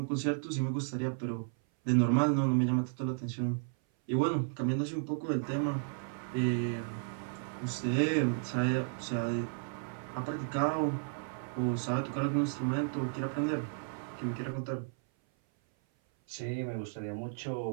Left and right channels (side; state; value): left; silent; 55 dB below the other